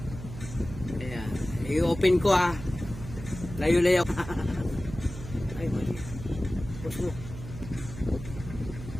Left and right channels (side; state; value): right; noise; hum, 11 dB below the sound